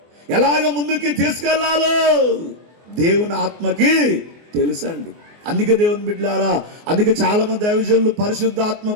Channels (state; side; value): late; left; 24 ms